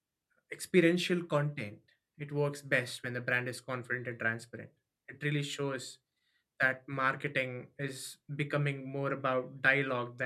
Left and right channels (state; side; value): identical; both; correlation 1.00